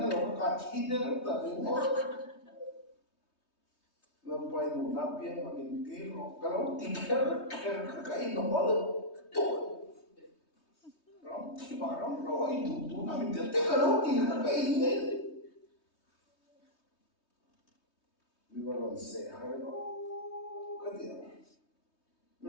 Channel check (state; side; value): late; right; 3.2 ms